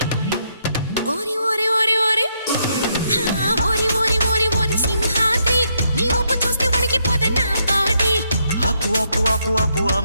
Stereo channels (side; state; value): both; inverted; correlation -0.76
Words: ఓరి ఓరి ఓరి ఓరి ఓరి ఓరి ఓరి ఓరి సింహాద్రి నీ ఊపు చూస్తే వణికిపోదా నా బాడీ ఆపు ఆపు ఆపు ఆపు